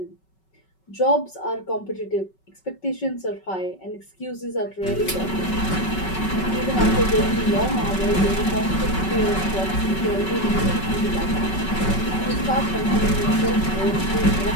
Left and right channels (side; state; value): right; late; 5.3 ms